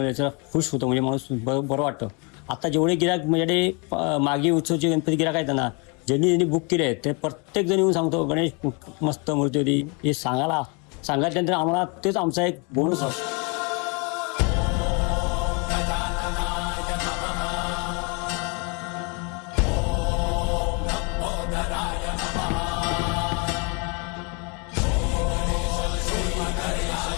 खुश होतं, म्हणजे माणूस बरं वाटतं. आता जेवढे गिराक माझ्याकडे मागे उत्सवचे गणपती गिराक आहेत ना, ज्यांनी बुक केले आहेत, ते प्रत्येक जण येऊन सांगतो गणेश मस्त मूर्ती होती. हे सांगायच्यानंतर आम्हाला तेच आमचा एक बोनस असतो.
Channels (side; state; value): right; quieter; 33.2 dB